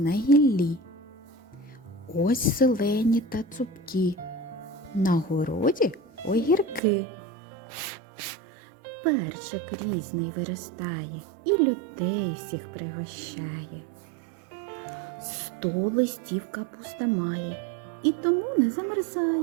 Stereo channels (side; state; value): left; drops out; at 6.8 s